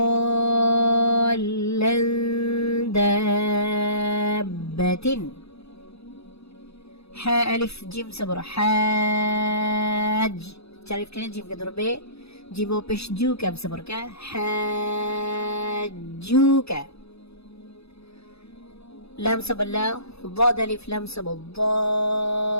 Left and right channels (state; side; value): late; right; 0.79 ms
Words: دابة। حا ألف جيم صبر حاج، تعرف كنا جيم كدربة جيمو بش جوكا بصبر كا حاجوكا. لام صبر لا، ضاد ألف لام صبر